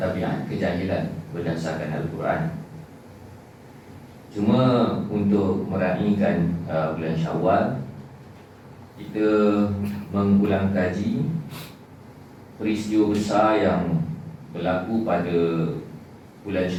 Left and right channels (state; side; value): identical; both; correlation 1.00